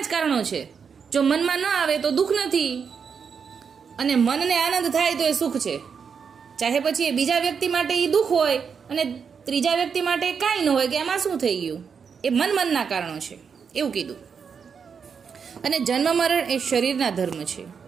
જ કારણો છે. જો મનમાં ન આવે તો દુઃખ નથી, અને મનને આનંદ થાય તો એ સુખ છે. ચાહે પછી એ બીજા વ્યક્તિ માટે એ દુઃખ હોય અને ત્રીજા વ્યક્તિ માટે કાંઈ ન હોય કે એમાં શું થઈ ગયું, એ મનના કારણો છે એવું કીધું. અને જન્મ મરણ એ શરીરના ધર્મ છે.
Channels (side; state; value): left; quieter; 6.4 dB